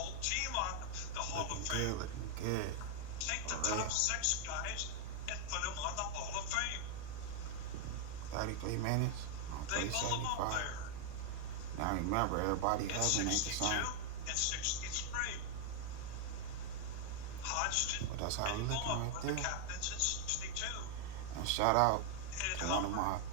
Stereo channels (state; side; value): different; both; correlation 0.00